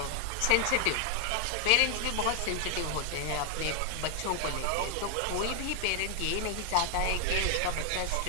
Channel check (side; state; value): both; different; correlation 0.00